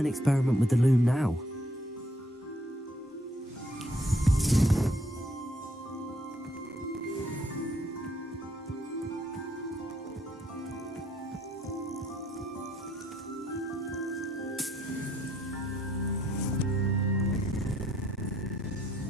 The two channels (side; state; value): both; normal; correlation 0.69